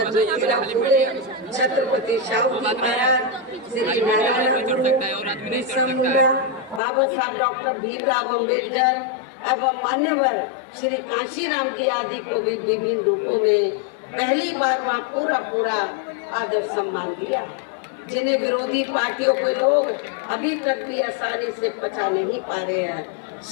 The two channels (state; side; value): drops out; right; at 6.8 s